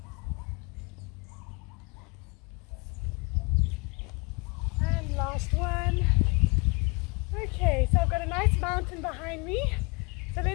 And last one. Okay, so I've got a nice mountain behind me, so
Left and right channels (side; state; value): right; quieter; 30.1 dB